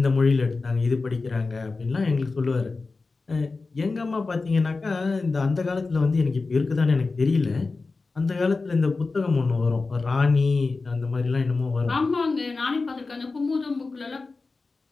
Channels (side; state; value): right; quieter; 3.9 dB